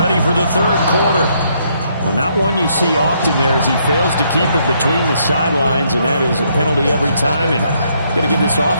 for the third quarter. Well, not one you see often there as he fails to keep it between the sidelines, and that is a penalty every time, and going to give this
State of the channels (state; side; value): inverted; both; correlation -0.72